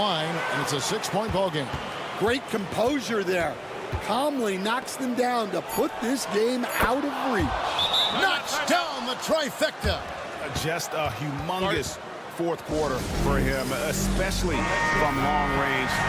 and it's a 6-point ball game. Great composure there. Calmly knocks them down to put this game out of reach. Knocks down the trifecta. Just a humongous fourth quarter for him, especially from long range.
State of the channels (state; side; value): identical; both; correlation 1.00